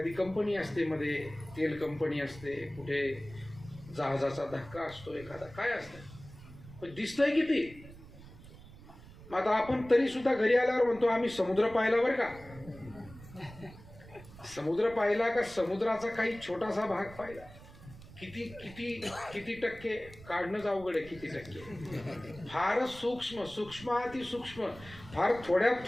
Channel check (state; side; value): noise; right; rumble, 18 dB below the sound